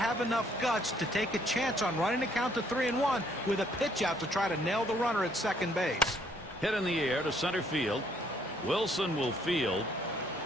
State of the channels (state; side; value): normal; both; correlation 0.66